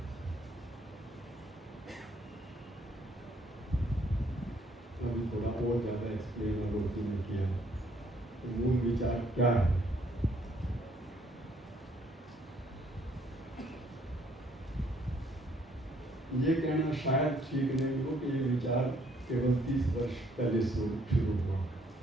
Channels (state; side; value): normal; both; correlation 0.66